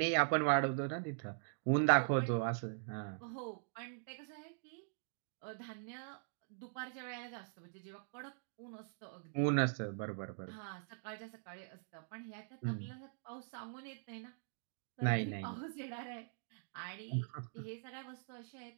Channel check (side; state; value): left; silent; digital silence